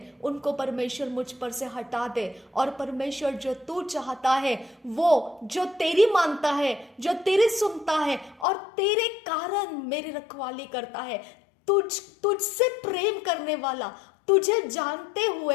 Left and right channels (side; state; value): right; drops out; at 8.5 s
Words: उनको परमेश्वर मुझ पर से हटा दे। और परमेश्वर, जो तू चाहता है, वो जो तेरी मानता है, जो तेरी सुनता है और तेरे कारण मेरी रखवाली करता है, तुझसे प्रेम करने वाला, तुझे जानते